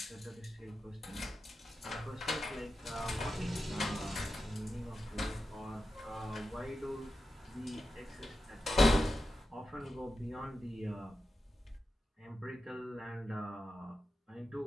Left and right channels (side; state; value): both; normal; correlation 0.90